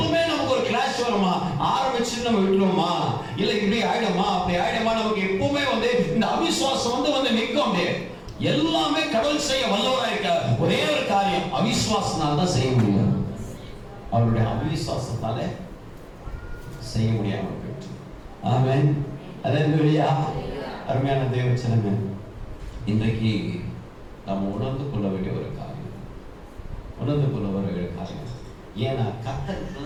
நமக்கு ஒரு கிளாஷ் வருமா, ஆரம்பிச்சு நம்ம விட்டுருவோமா, இல்ல இப்படி ஆயிடுமா அப்படி ஆயிடுமா, நமக்கு எப்பவுமே வந்து இந்த அவிசுவாசம் வந்து நிற்கும். எல்லாமே கடவுள் செய்ய வல்லவரா இருக்க ஒரே ஒரு காரியம், அவிசுவாசனால தான் செய்ய முடியும். அவருடைய அவிசுவாசத்தால செய்ய முடியாம போயிட்டு. ஆமென். அல்லேலூயா. அருமையான தேவச்சனமே, இன்றைக்கு நாம் உணர்ந்து கொள்ள வேண்டிய ஒரு காரியம். ஏன்னா கர்த்தருக்கு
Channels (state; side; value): identical; both; correlation 1.00